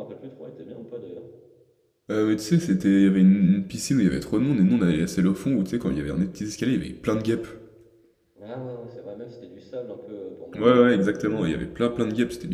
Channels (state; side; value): identical; both; correlation 1.00